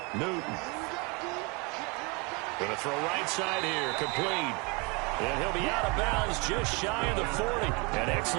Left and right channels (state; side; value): quieter; left; 29.5 dB